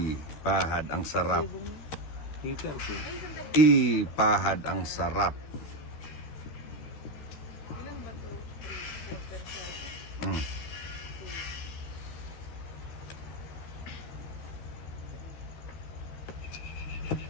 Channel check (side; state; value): right; late; 13 ms